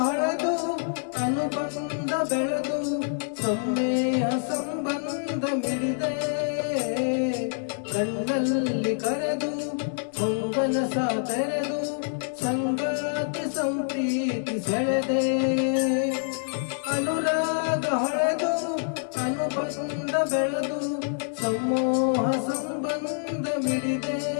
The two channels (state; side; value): silent; right; digital silence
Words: ಅನುಬಂಧ ಬೆಳೆದು ಸಮ್ಮೇಹ ಸಂಬಂಧ ಮಿಡಿದೆ ಕಣ್ಣಲ್ಲಿ ಕರೆದು ಹೊಂಗಲ ಸಾತೆರೆದು ಸಂಗಾತಿ ಸಂಪ್ರೀತಿ ಸೆಳೆದೆ ಅನುರಾಗ ಹೊಳೆದು ಅನುಬಂಧ ಬೆಳೆದು ಸಮೂಹ ಸಂಬಂಧ ಮಿಡಿದೆ